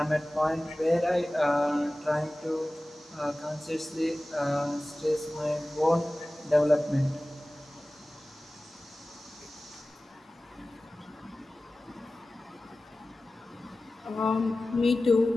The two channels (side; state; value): both; normal; correlation 0.97